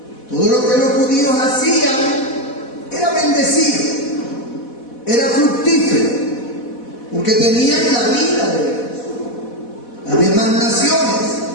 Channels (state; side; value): late; right; 4.1 ms